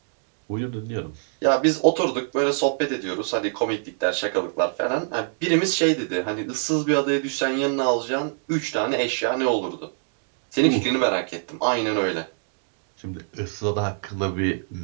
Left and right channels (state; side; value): silent; left; digital silence